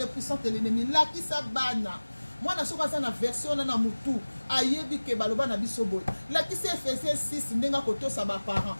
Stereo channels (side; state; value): both; inverted; correlation -1.00